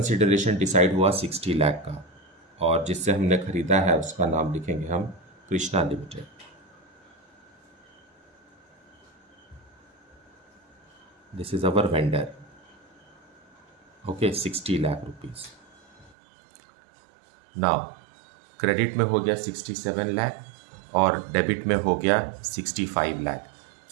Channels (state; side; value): drops out; left; at 16.2 s